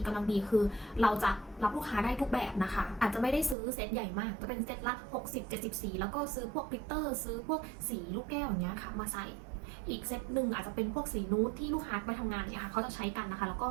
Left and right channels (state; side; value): drops out; left; at 3.6 s